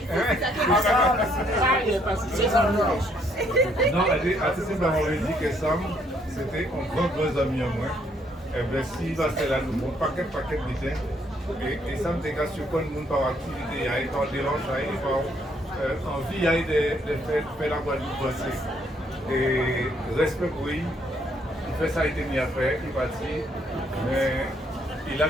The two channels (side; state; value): both; normal; correlation 0.69